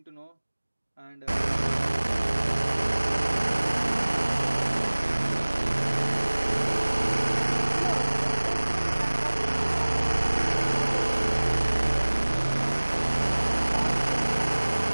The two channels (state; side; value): inverted; both; correlation -1.00